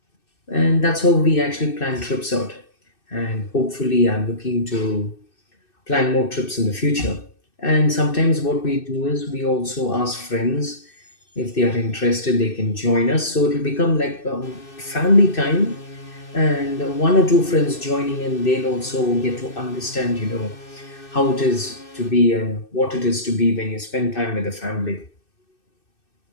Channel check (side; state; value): right; late; 2.6 ms